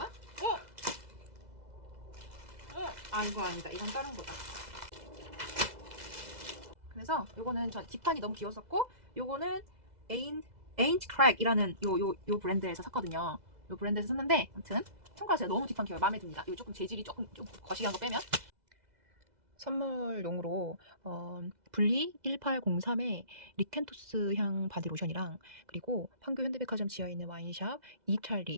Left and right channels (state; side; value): late; left; 2.0 ms